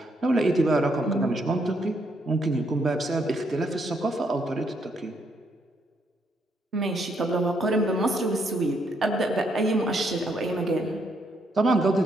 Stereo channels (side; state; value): both; normal; correlation 0.74